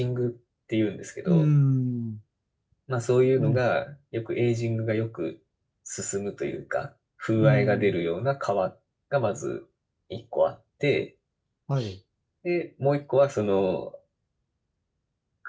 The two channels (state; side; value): identical; both; correlation 1.00